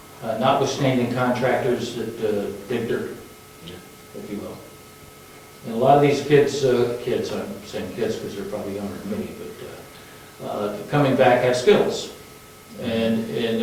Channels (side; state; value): both; identical; correlation 1.00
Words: Notwithstanding contractors that dig dirt, if you will. And a lot of these kids, I'm saying kids because they're probably younger than me, but coming back have skills.